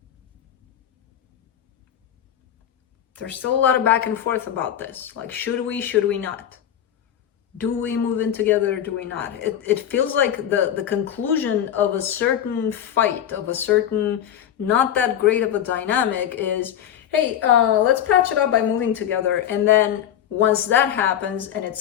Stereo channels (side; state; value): right; quieter; 10.2 dB